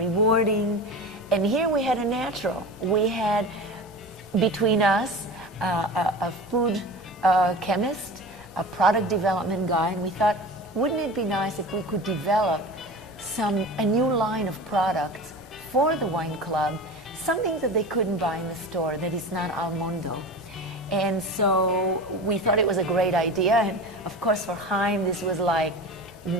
And here we had a natural. We had between us a food chemist, a product development guy, and we thought, wouldn't it be nice if we could develop a new line of products for the wine club, something that they couldn't buy in the store that is not al mondo. And so we thought it was a great idea, and of course for Chaim this was like,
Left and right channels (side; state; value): both; normal; correlation 0.32